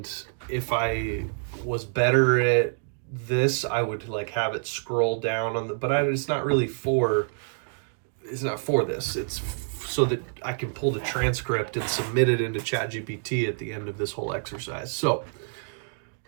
if I was better at this, I would have it scroll down on the, but it's not really for, it's not for this. It's so that I can pull the transcript and submit it into ChatGPT at the end of this whole exercise. So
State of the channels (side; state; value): left; silent; digital silence